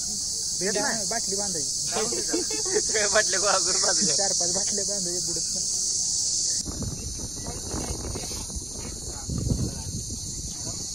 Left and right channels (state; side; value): noise; left; rumble, 14 dB below the sound